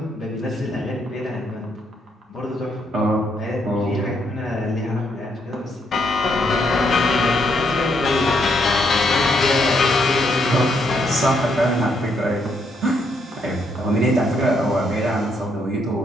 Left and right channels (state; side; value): normal; both; correlation 0.75